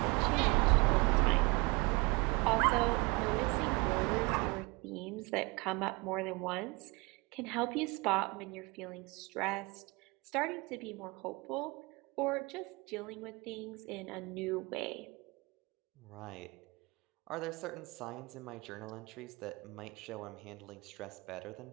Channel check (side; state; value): left; quieter; 26.5 dB